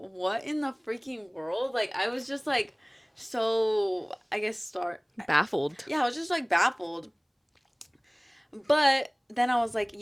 in the freaking world? Like, I was just like, so, I guess, Baffled. yeah, I was just like baffled. But then I was like,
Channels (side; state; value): both; identical; correlation 1.00